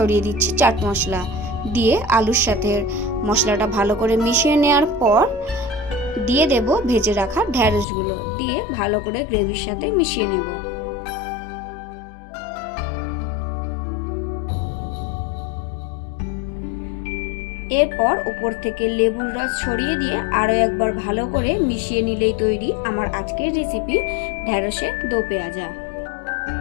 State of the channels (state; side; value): drops out; right; at 7.9 s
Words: দিচ্ছি চাট মশলা। দিয়ে আলুর সাথে মশলাটা ভালো করে মিশিয়ে নেওয়ার পর দিয়ে দেব ভেজে রাখা ঢ্যাঁড়সগুলো, দিয়ে ভালো করে গ্রেভির সাথে মিশিয়ে নেব। এরপর উপর থেকে লেবুর রস ছড়িয়ে দিয়ে আরও একবার ভালো করে মিশিয়ে নিলেই তৈরি আমার আজকের রেসিপি ঢ্যাঁড়সের দো পেঁয়াজা।